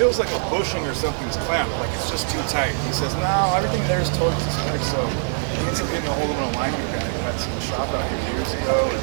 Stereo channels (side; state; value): left; silent; digital silence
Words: like a bushing or something's clamped, like it's just too tight. He says, no, everything there is totally tight, so he needs to get a hold of an alignment guy. That's in the shop out here years ago.